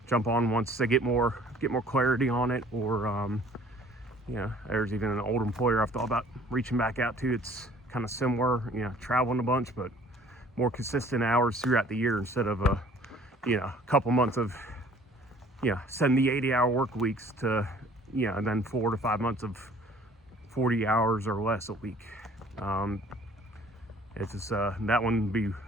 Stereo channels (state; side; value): normal; both; correlation 0.54